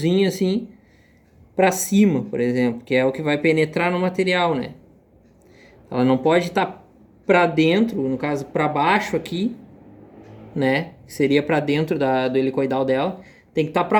assim para cima, por exemplo, que é o que vai penetrar no material, né? Ela não pode estar para dentro, no caso para baixo aqui, né? Que seria para dentro do helicoidal dela, tem que estar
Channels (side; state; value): both; identical; correlation 1.00